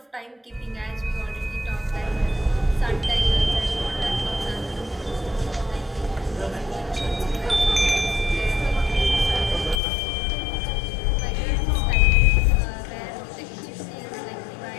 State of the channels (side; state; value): right; drops out; at 9.8 s